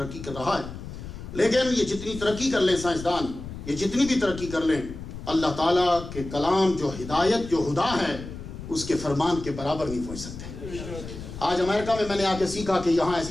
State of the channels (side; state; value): left; noise; rumble, 11 dB below the sound